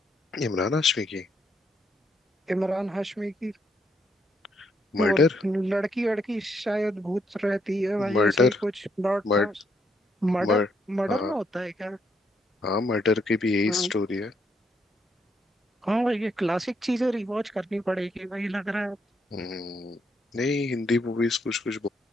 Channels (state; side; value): normal; both; correlation 0.75